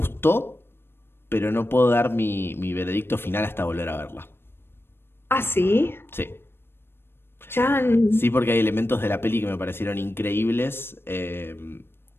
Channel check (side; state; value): right; late; 0.11 ms